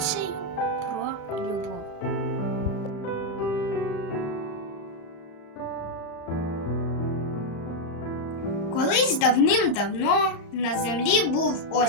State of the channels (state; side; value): late; right; 35 ms